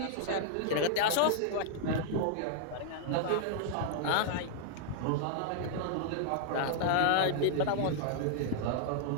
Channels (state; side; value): different; both; correlation -0.01